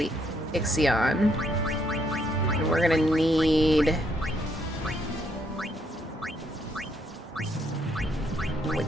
Ixion. And we're gonna need...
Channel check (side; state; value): both; normal; correlation 0.73